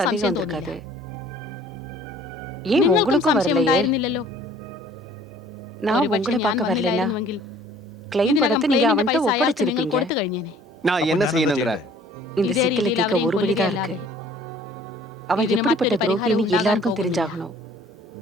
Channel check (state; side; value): normal; both; correlation 0.53